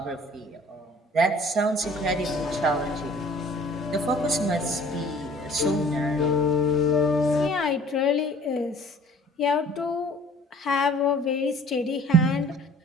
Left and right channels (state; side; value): normal; both; correlation 0.51